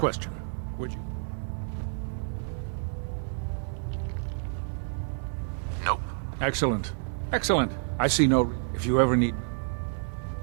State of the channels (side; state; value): left; silent; digital silence